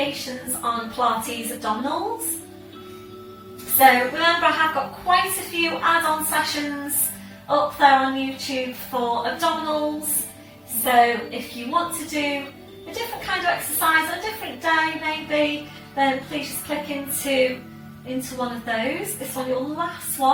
on Pilates abdominals. So remember, I have got quite a few add-on sessions up there on YouTube for abdominals. So if you want to do a different kind of exercise on a different day maybe, then please just click into one of those. This one, your last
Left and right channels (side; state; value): both; identical; correlation 1.00